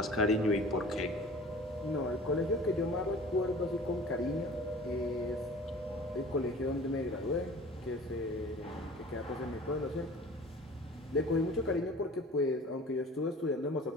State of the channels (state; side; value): normal; both; correlation 0.43